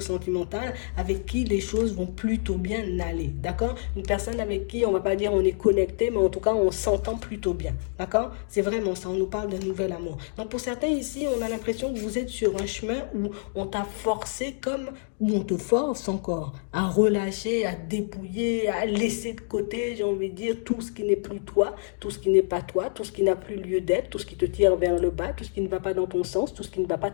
avec qui les choses vont plutôt bien aller. D'accord? Une personne avec qui on ne va pas dire on est connecté, mais en tout cas on s'entend plutôt bien. D'accord? C'est vraiment ça, on nous parle de nouvel amour. Donc pour certains ici, on a l'impression que vous êtes sur un chemin où on t'a forcé comme, où on te force encore à relâcher, à dépouiller, à laisser de côté, j'ai envie de dire, tout ce qui n'est plus toi, tout ce qui n'est pas toi, tout ce qui n'a plus lieu d'être, tout ce qui te tire vers le bas, tout ce qui ne va pas dans ton sens, tout ce qui ne va pas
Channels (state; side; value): silent; right; digital silence